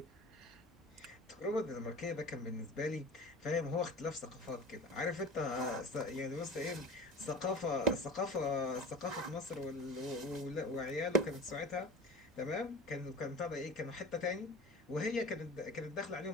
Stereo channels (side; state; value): both; normal; correlation 0.36